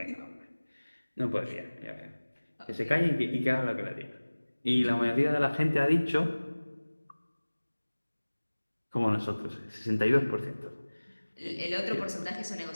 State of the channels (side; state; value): both; inverted; correlation -1.00